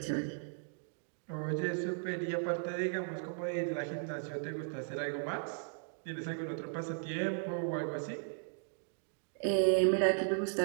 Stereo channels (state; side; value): silent; left; digital silence